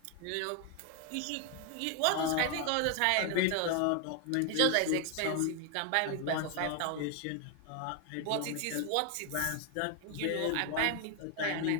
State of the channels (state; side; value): different; both; correlation 0.01